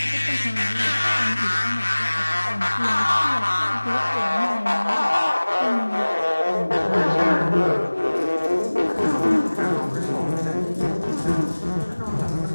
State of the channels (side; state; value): both; inverted; correlation -1.00